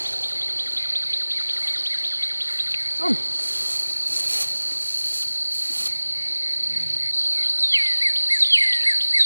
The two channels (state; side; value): inverted; both; correlation -1.00